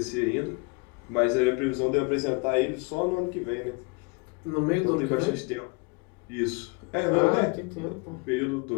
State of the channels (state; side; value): quieter; right; 30.2 dB